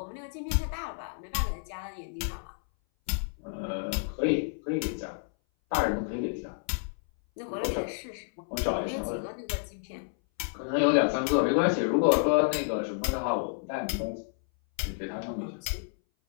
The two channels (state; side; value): silent; right; 58 dB below the other